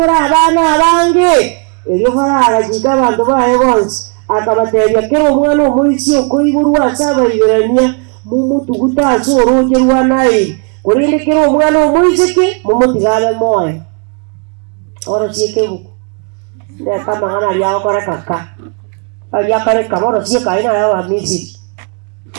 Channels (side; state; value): left; quieter; 38.3 dB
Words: abana abange ebyo baragajika abantu baye bonse akabateria kero omwana omuisi okoiburwa asabaibirania mumutuguta sorogerwa naye kurinde kero omwana omuisi ke mumutigale moyo oro siekebuku nde kama ngana liao kora kaka ya kare kamoro sieka ina ya Misiri